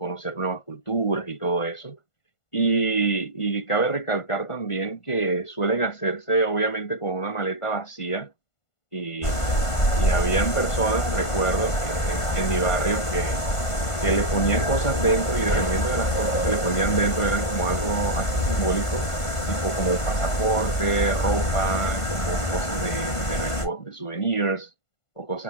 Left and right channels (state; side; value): late; right; 1.5 ms